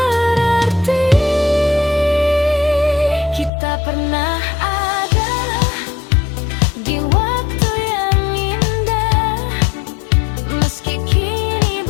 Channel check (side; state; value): right; drops out; at 3.5 s